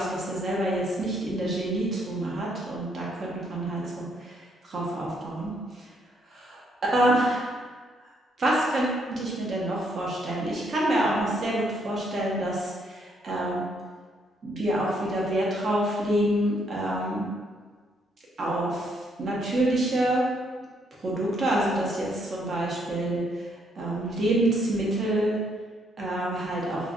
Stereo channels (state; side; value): normal; both; correlation 0.71